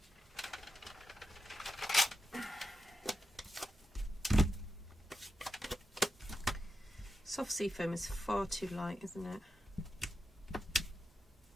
Soft sea foam is far too light, isn't it?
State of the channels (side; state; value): both; normal; correlation 0.88